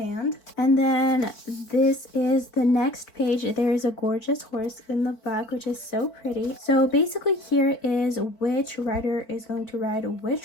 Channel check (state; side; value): late; right; 4.5 ms